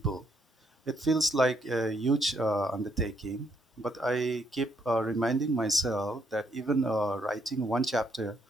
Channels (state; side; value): normal; both; correlation 0.73